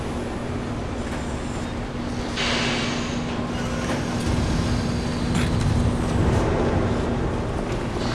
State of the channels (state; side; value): identical; both; correlation 1.00